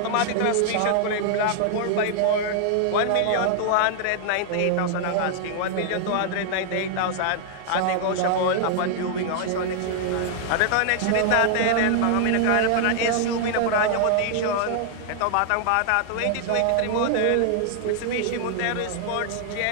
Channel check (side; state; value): both; different; correlation -0.01